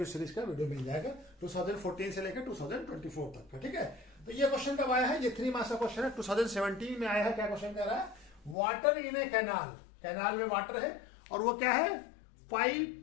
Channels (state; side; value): drops out; right; at 8.6 s